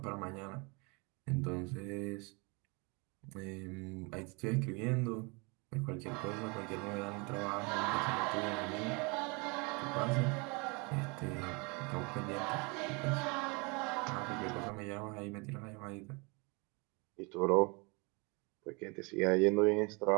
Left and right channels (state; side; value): quieter; left; 30.0 dB